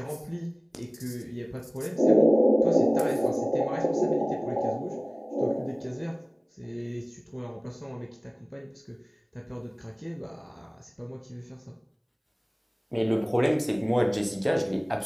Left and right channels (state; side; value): identical; both; correlation 1.00